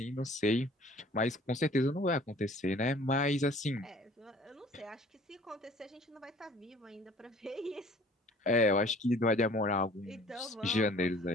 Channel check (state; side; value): normal; both; correlation 0.52